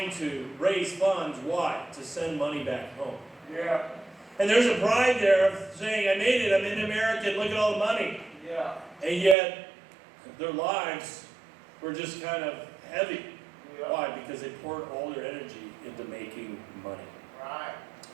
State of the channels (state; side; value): drops out; left; at 9.3 s